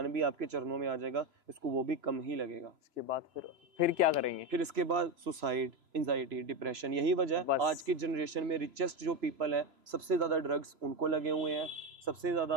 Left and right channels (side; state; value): left; late; 3.0 ms